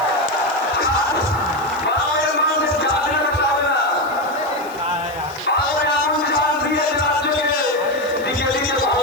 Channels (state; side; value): noise; left; hiss, 22 dB below the sound